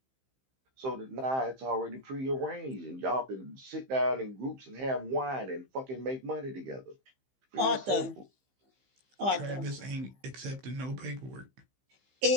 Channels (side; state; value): left; late; 15 ms